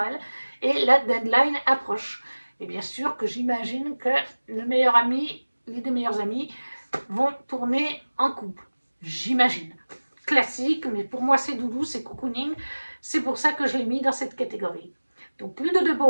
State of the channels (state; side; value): inverted; both; correlation -1.00